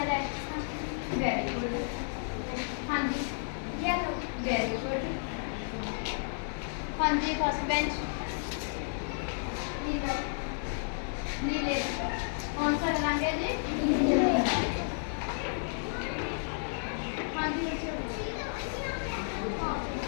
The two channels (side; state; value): right; silent; 56 dB below the other